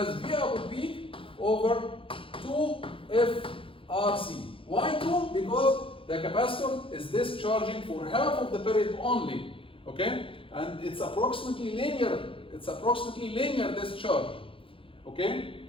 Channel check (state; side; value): late; right; 0.26 ms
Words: V output peak over 2 FRC. Why 2? Because the capacitor is discharging for half of the period only. Okay? And it's approximately linear. Discharge. Okay?